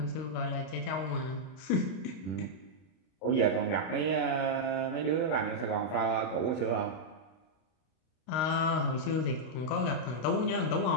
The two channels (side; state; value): right; late; 32 ms